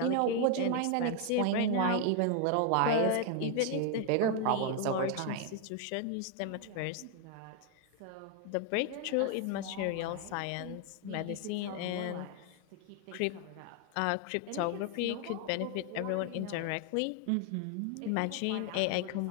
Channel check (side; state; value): both; different; correlation 0.00